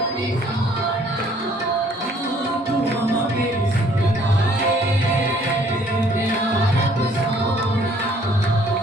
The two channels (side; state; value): both; normal; correlation 0.60